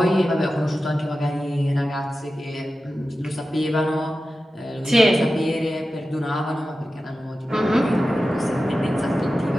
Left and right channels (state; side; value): normal; both; correlation 0.93